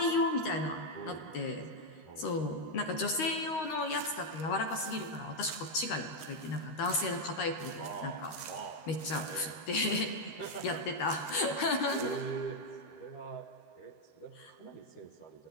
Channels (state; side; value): late; right; 13 ms